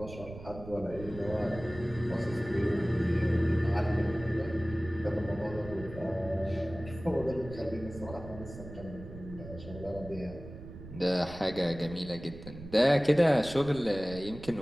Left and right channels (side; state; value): right; noise; rumble, 13 dB below the sound